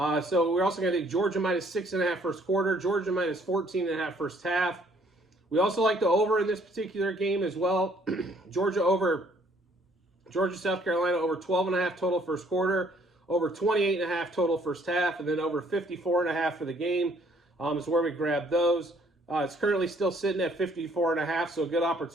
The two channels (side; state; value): both; normal; correlation 0.63